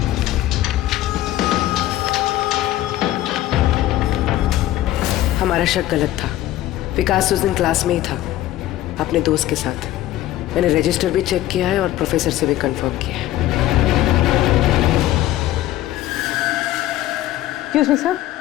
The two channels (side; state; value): right; quieter; 14.6 dB